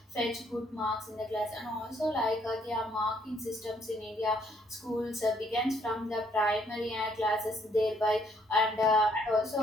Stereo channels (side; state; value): both; normal; correlation 0.68